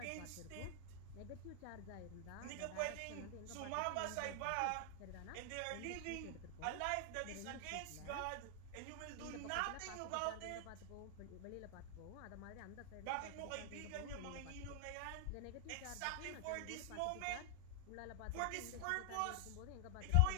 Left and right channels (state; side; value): different; both; correlation 0.00